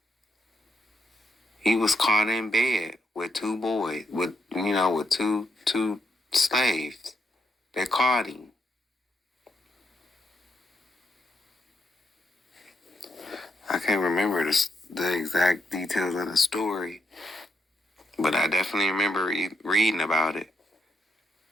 He was caught in bed with two boys, with two slaves. They caught him. I can't remember the exact details of the story, but I definitely remember reading about it.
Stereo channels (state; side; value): normal; both; correlation 0.79